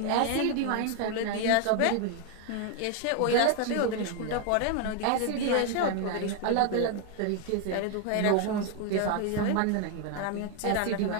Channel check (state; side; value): different; both; correlation 0.01